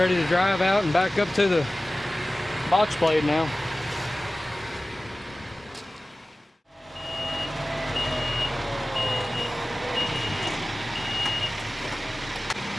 to drive out and back up to the box blade now.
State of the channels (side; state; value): both; normal; correlation 0.97